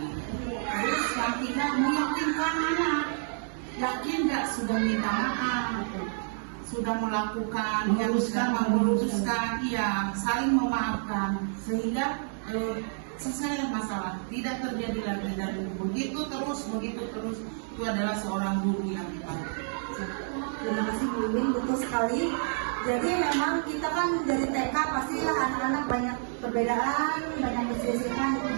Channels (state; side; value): silent; left; digital silence